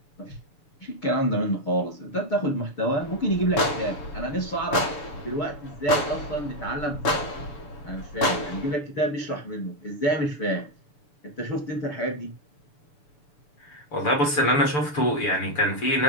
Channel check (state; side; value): late; right; 6.9 ms